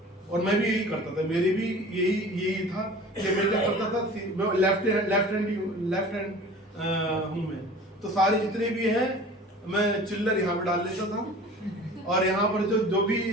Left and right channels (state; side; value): normal; both; correlation 0.42